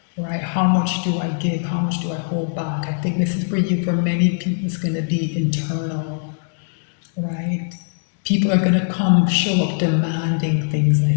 right? How much do I give? How much do I hold back? I think this is for you. For many people, it's going to be internal, right? People are going to show up demanding things, I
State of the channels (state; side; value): silent; right; digital silence